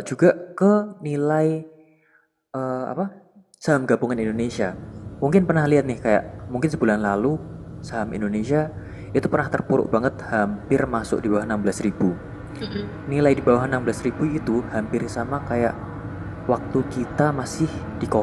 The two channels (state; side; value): identical; both; correlation 1.00